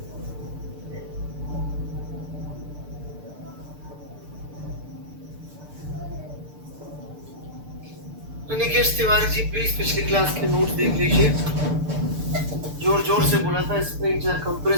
राकेश तिवारी जी प्लीज पिछली क्लास के नोट्स देख लीजिए। जोर जोर से बोला था स्प्रिंग चाहे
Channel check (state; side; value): late; left; 6.7 ms